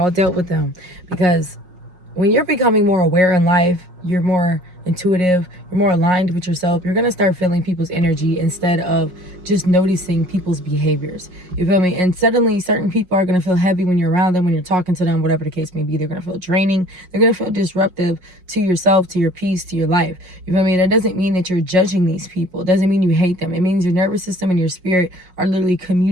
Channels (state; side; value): late; left; 5.5 ms